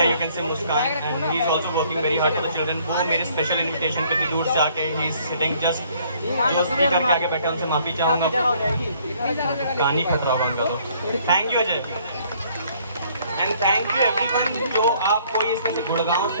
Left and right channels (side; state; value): both; inverted; correlation -0.62